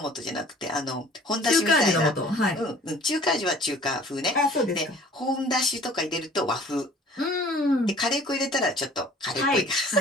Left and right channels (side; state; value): both; normal; correlation 0.50